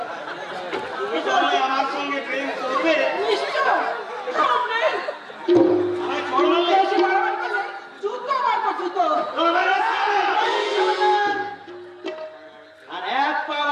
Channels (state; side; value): identical; both; correlation 1.00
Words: তুমি তাহলে আমার সঙ্গে প্রেম করবে? নিশ্চয়, সামনে। আমায় ছড় মারলে? এসে মারামারি করলে জুতো মারবো, জুতো। আর এক পা